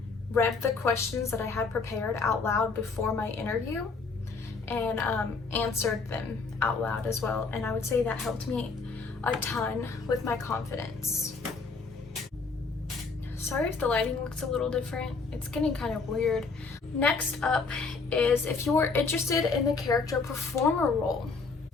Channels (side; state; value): right; quieter; 4.4 dB